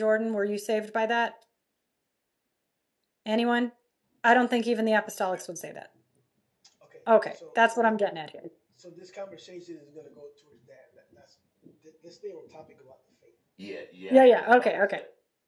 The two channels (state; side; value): identical; both; correlation 1.00